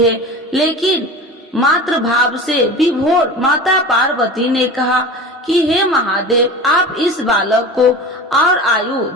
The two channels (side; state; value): both; normal; correlation 0.33